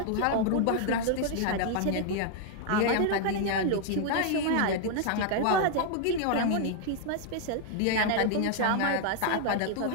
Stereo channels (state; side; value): different; both; correlation 0.00